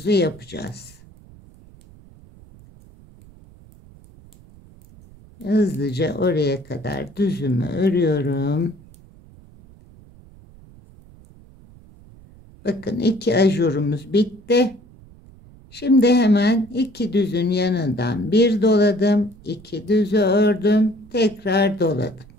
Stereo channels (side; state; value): right; noise; rumble, 24 dB below the sound